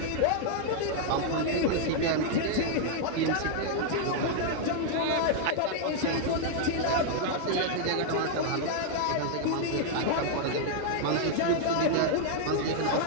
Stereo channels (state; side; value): different; both; correlation 0.00